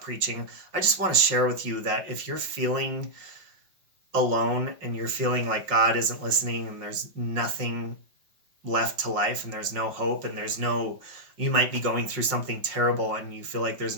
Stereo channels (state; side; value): late; left; 5.5 ms